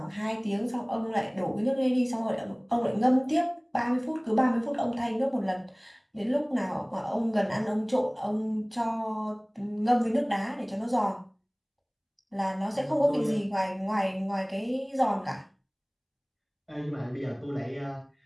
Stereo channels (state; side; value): identical; both; correlation 1.00